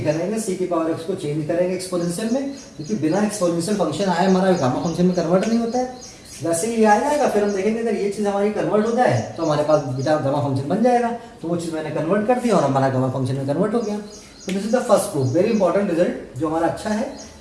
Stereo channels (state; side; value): identical; both; correlation 1.00